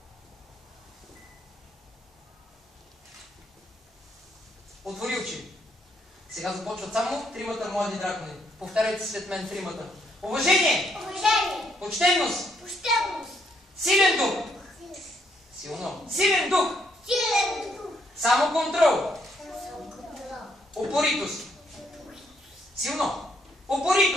Отвори очи. Сега започват само тримата млади дракони. Повтаряйте след мен тримата. Уважение! Уважение! Почтенност! Почтенност! Силен дух! Силно! Силен дух! Силен дух! Само контрол! Самоконтрол! Упоритост! Силно!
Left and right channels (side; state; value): both; normal; correlation 0.73